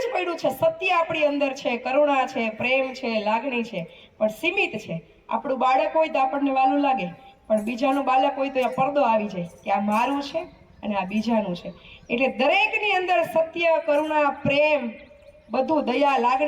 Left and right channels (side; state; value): both; identical; correlation 1.00